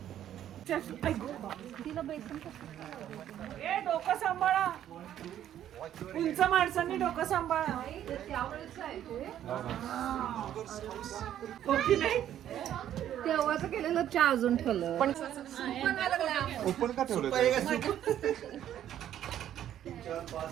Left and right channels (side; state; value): left; quieter; 11.1 dB